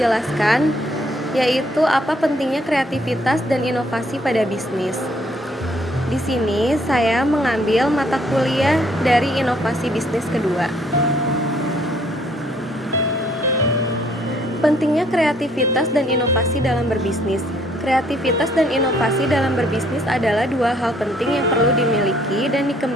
yaitu apa pentingnya kreativitas dan inovasi pada bisnis. Di sini saya mengambil mata kuliah dari inovasi bisnis kedua. Pentingnya kreativitas dan inovasi dalam berbisnis. Kreativitas dan inovasi dalam berbisnis adalah dua hal penting yang perlu dimiliki dan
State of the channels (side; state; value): both; normal; correlation 0.65